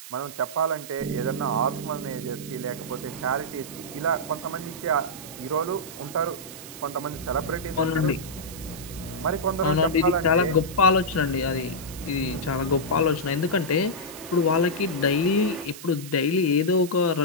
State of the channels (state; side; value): noise; right; hiss, 14 dB below the sound